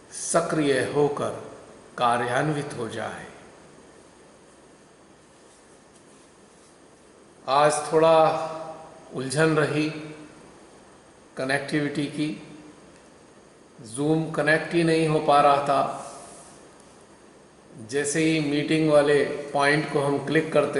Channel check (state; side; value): identical; both; correlation 1.00